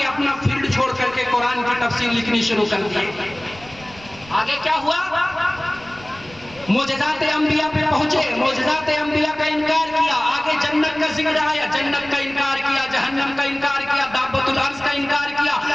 اپنا فیلڈ چھوڑ کر کے قرآن کی تفسیر لکھنی شروع کر دی. آگے کیا ہوا؟ معجزات انبیاء پہ پہنچے, معجزات انبیاء کا انکار کیا. آگے جنت کا ذکر آیا, جنت کا انکار کیا, جہنم کا انکار کیا, دابۃ الارض کا انکار کیا,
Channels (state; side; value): noise; right; rumble, 21 dB below the sound